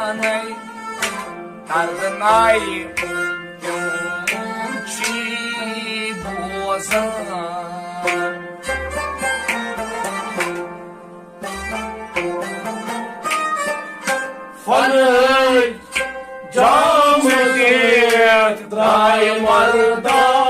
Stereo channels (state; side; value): identical; both; correlation 1.00